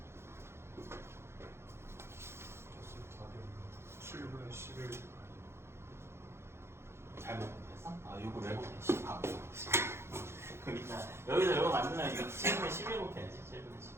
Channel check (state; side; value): late; left; 0.12 ms